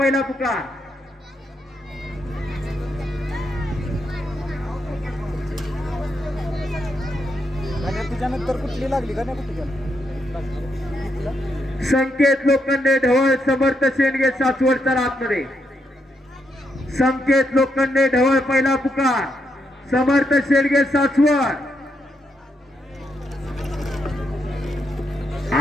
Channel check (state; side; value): normal; both; correlation 0.80